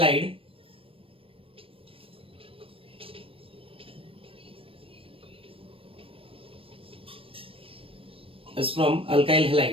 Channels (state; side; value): late; left; 0.27 ms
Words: Is from alkyl